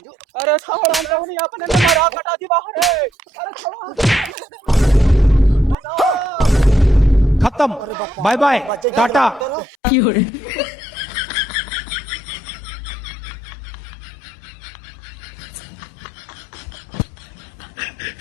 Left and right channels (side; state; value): right; drops out; at 9.8 s